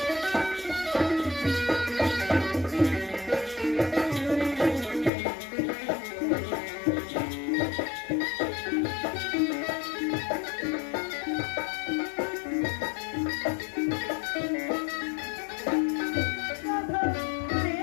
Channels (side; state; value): right; drops out; at 5.1 s